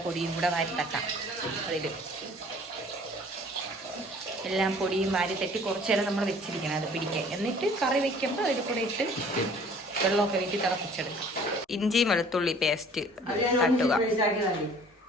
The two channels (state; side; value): normal; both; correlation 0.52